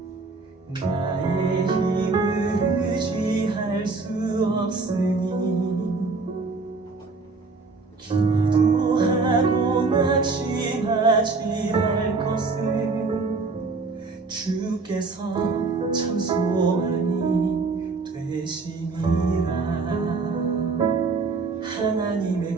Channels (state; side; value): quieter; left; 4.0 dB